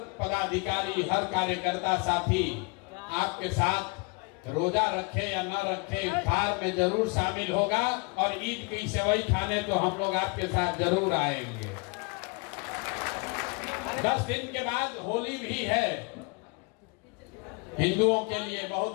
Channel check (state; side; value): quieter; right; 31.6 dB